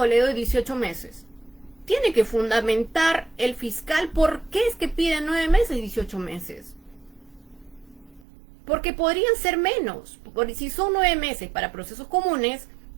le doy 18 meses. Tiene que fundamentar el fiscal por qué es que pide 9 meses y 18 meses. Porque podrían ser menos. Si son 9 meses para procesos comunes,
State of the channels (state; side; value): drops out; left; at 8.2 s